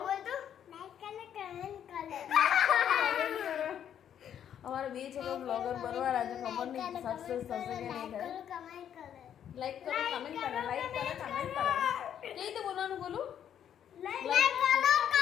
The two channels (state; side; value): quieter; right; 9.5 dB